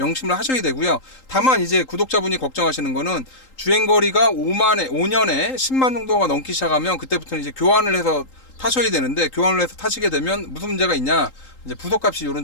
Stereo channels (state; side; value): late; right; 3.8 ms